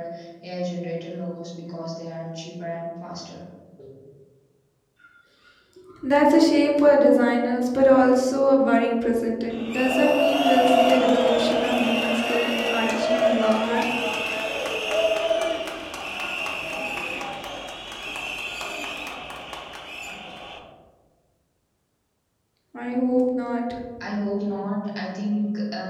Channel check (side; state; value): both; identical; correlation 1.00